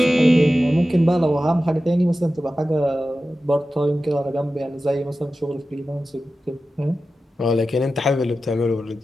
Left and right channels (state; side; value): normal; both; correlation 0.94